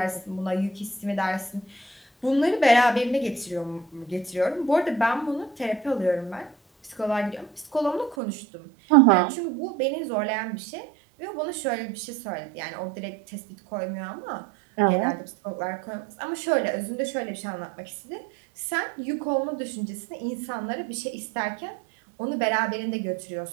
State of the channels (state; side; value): drops out; left; at 8.2 s